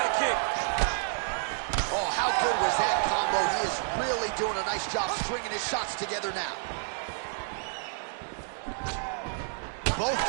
kick. Oh, how good was that combo? He is really doing a nice job stringing his shots together now. Both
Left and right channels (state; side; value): silent; left; digital silence